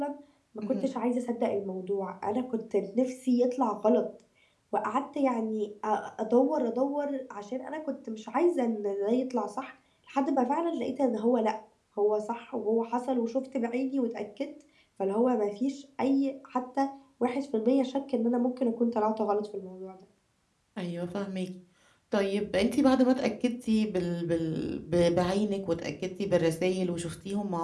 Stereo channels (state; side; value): identical; both; correlation 1.00